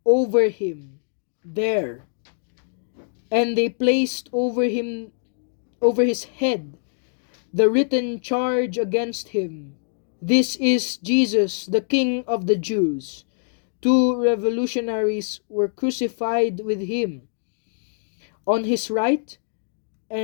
over him there. And they placed over his head the written charge against him: "This is Jesus, the King of the Jews." 2 revolutionaries were crucified with him on his right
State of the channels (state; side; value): silent; right; digital silence